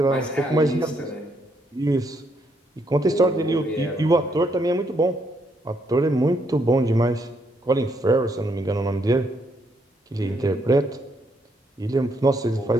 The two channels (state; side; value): normal; both; correlation 0.74